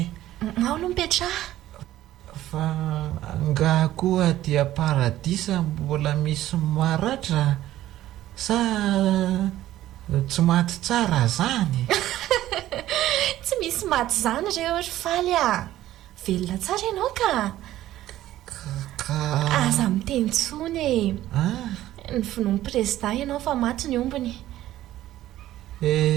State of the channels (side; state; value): left; quieter; 14.1 dB